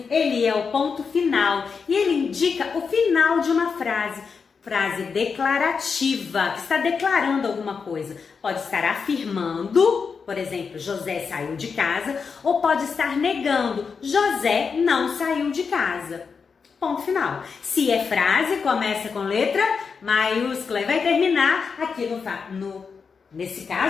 ele é o ponto final e ele indica o final de uma frase declarativa, que está declarando alguma coisa. Pode estar afirmando, por exemplo, José saiu de casa, ou pode estar negando, José não saiu de casa. Ponto final. Se é frase, começa com letra maiúscula e vai terminar aqui nesse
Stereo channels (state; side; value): quieter; right; 5.6 dB